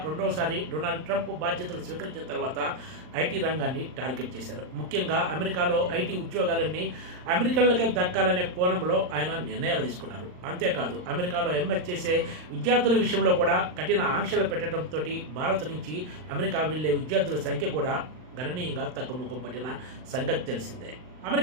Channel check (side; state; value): left; late; 39 ms